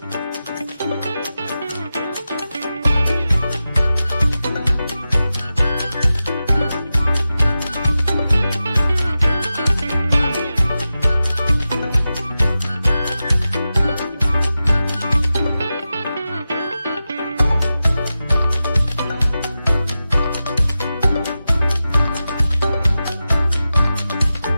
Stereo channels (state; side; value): inverted; both; correlation -0.93